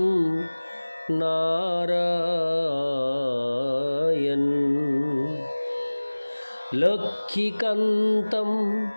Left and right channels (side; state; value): both; inverted; correlation -1.00